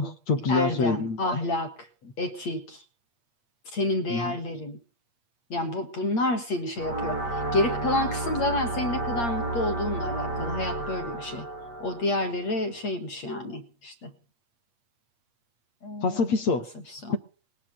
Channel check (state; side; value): late; right; 8.5 ms